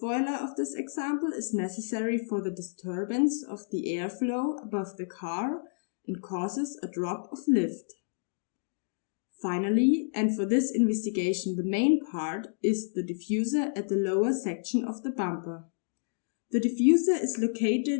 of this example is necessary for the disturbance of the airflow above the car and causes a drop of lift. Finally, and for this investigation the main part, is the diffuser at the lower section of the bumper. The diffuser is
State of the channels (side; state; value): right; silent; digital silence